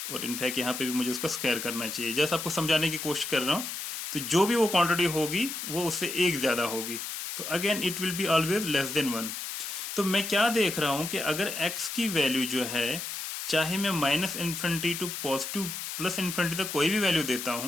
और इनफैक्ट यहाँ पे भी मुझे उसका स्क्वायर करना चाहिए, जैसे आपको समझाने की कोशिश कर रहा हूँ। तो जो भी वो क्वांटिटी होगी वो उससे एक ज्यादा होगी, तो again it will be always less than 1। तो मैं क्या देख रहा हूं कि अगर x की वैल्यू जो है, चाहे मैं -infinity to positive plus infinity तक कोई भी वैल्यू देता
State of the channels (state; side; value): noise; left; hiss, 6 dB below the sound